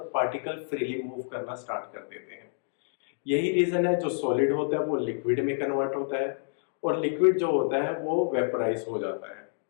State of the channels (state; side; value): silent; right; digital silence